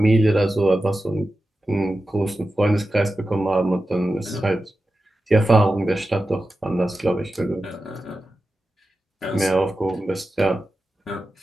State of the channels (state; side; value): normal; both; correlation 0.93